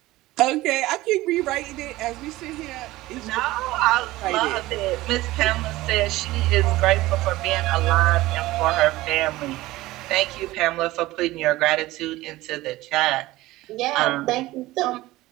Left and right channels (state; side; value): quieter; left; 18.0 dB